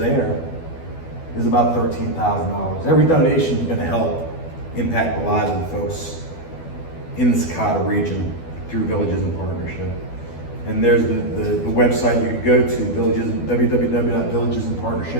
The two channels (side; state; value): right; late; 12 ms